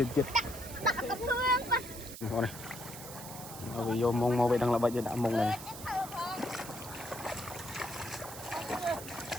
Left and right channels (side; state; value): right; noise; hiss, 12 dB below the sound